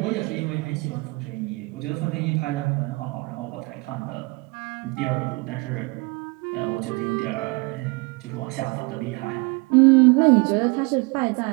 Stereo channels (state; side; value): quieter; left; 27.0 dB